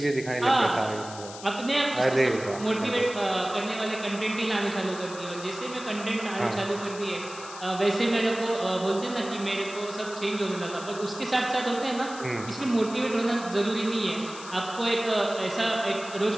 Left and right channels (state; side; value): noise; left; hiss, 14 dB below the sound